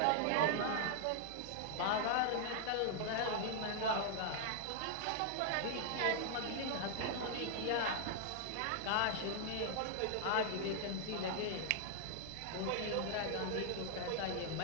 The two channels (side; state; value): both; different; correlation 0.00